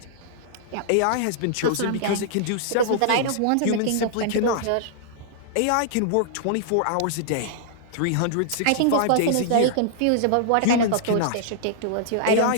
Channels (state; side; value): different; both; correlation -0.01